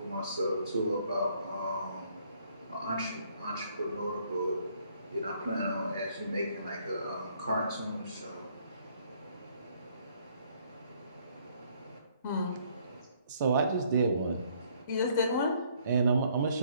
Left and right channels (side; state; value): both; inverted; correlation -0.65